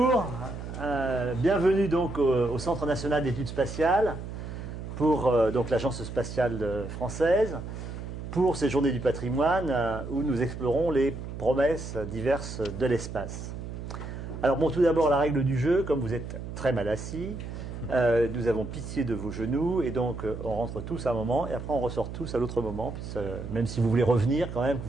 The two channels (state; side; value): noise; right; hum, 8 dB below the sound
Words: bienvenue donc au Centre national d'études spatiales pour donc l'Agence spatiale française pour ces journées du patrimoine où nous explorons les promesses diverses de l'espace. Alors bon, tout d'abord la règle du jeu, comme vous êtes très mal assis, nous avons pitié de vos genoux et donc on rentre tous à un moment et après on ressort tous à l'autre moment, même si vous voulez revenir quand même, que